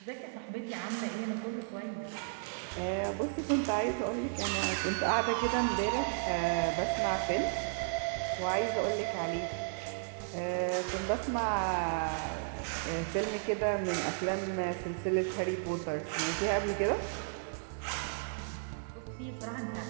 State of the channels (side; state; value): left; silent; digital silence